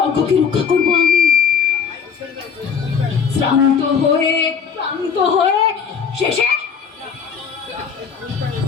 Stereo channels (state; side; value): quieter; right; 6.6 dB